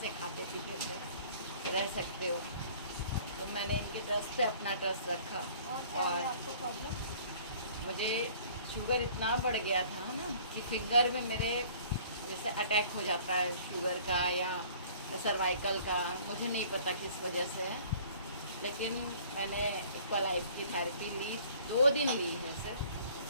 खाते पीते थे रह सकते हो, तो मैंने इनके ट्रस्ट पे अपना ट्रस्ट रखा। और आपको प्रॉब्लम? मुझे शुगर इतना बढ़ गया था ना कि फिंगर में मेरे जैसे अटैक हो जाता है शुगर का या सर्वाइकल का, मुझे नहीं पता किस वजह से है। लेकिन मैंने एक्वालाइफ की थेरेपी ली, 2 दिन ली है सिर्फ,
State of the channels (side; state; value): both; inverted; correlation -0.52